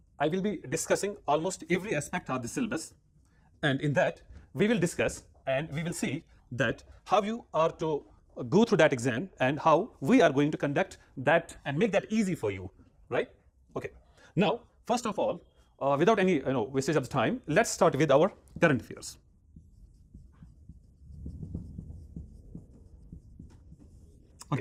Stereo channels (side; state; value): both; identical; correlation 1.00